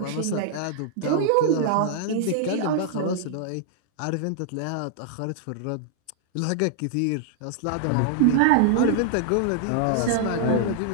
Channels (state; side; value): different; both; correlation 0.00